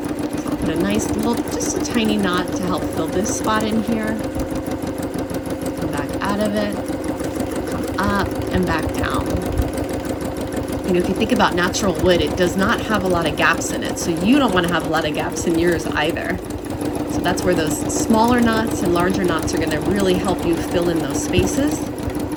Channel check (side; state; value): both; identical; correlation 1.00